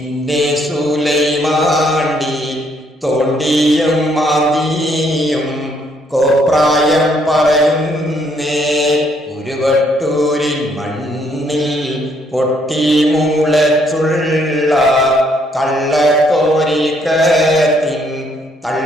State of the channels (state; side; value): normal; both; correlation 0.69